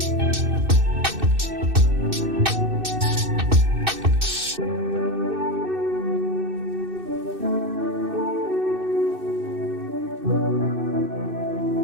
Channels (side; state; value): left; late; 2.6 ms